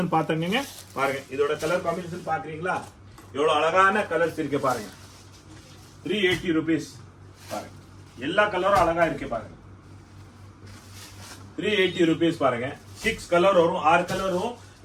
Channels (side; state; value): both; identical; correlation 1.00